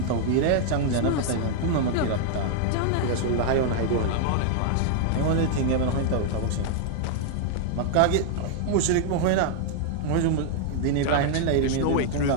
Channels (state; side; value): different; both; correlation 0.00